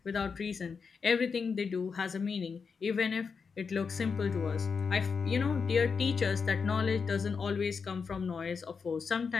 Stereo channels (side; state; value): right; quieter; 5.5 dB